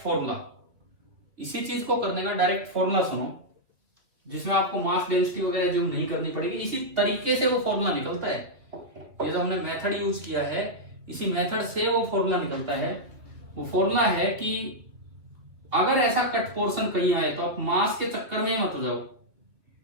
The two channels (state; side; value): late; left; 2.8 ms